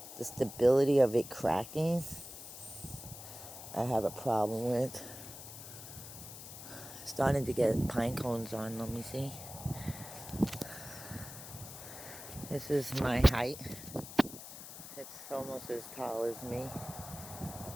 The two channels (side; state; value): left; noise; hiss, 12 dB below the sound